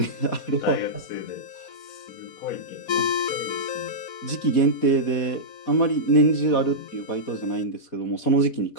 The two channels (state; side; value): late; right; 4.2 ms